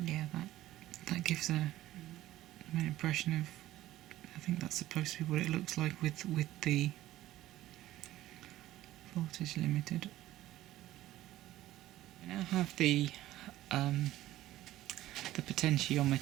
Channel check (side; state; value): left; quieter; 15.0 dB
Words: Yeah, that gives an impression of, I think that's supposed to be what it looks like with the voltage limited. I now have the